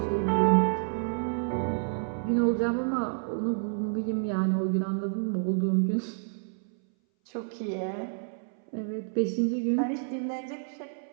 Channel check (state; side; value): silent; left; 58 dB below the other